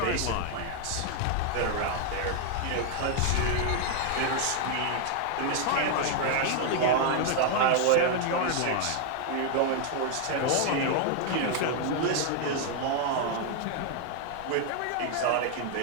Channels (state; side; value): different; both; correlation 0.00